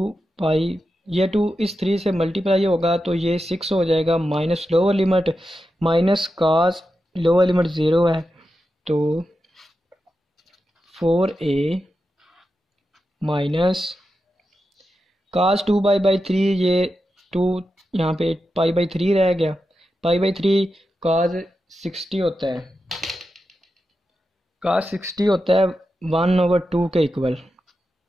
ये 2 इस 3 से मल्टीप्लाई होगा तो ये 6 हो जाएगा, minus lower limit minus cos lower limit 0 है, तो 4a माइनस cos 2π/3, ये 2 यहाँ पे π/3 रह गया। π/3 cos 60 होता है, cos 60 होता है 1/2 के इक्वल,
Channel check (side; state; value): both; normal; correlation 0.89